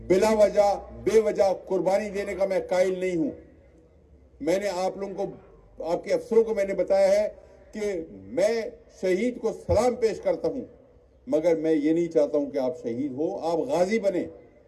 بلا وجہ، بے وجہ قربانی دینے کا میں قائل نہیں ہوں۔ میں نے آپ لوگوں کو، آپ کے افسروں کو میں نے بتایا ہے کہ میں شہید کو سلام پیش کرتا ہوں، مگر میں یہ نہیں چاہتا ہوں کہ آپ شہید ہو، آپ غازی بنیں،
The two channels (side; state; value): both; identical; correlation 1.00